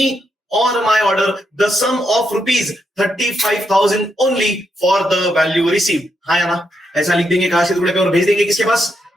or my order the sum of rupees 35,000 only for the value received. हाँ या ना? ऐसा लिख देंगे काश के टुकड़े पे और भेज देंगे किसके पास?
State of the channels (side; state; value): both; normal; correlation 0.81